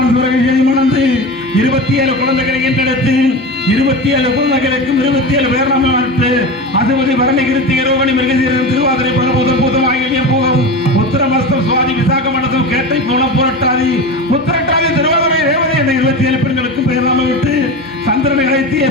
துறையை மணந்து 27 குழந்தைகளை என்றெடுத்து 27 குழந்தைகளுக்கும் 27 பேரணம் நடத்து அதுவதி வரணி கிருத்தி ரோகணி மிருகசீரன் திருவாதிரை பரபூதம் பூதம் ஆகிய போகும் உத்தரமஸ்தம் சுவாதி விசாக மண்டலம் கேட்டை கோலம் புரட்டாதி உத்தரட்டாதி திருவாதிரை ரேவதி என்ற 27 பெண்களுக்கும் பேரணம் விட்டு சந்திரனை அழைத்திய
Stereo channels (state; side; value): normal; both; correlation 0.27